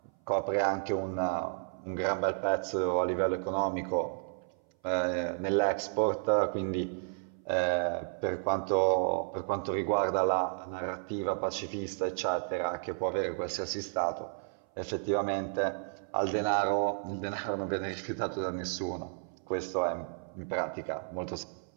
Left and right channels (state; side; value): silent; left; 56 dB below the other